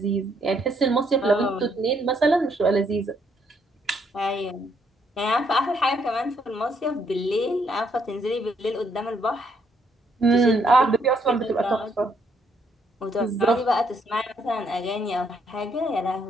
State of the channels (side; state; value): both; normal; correlation 0.71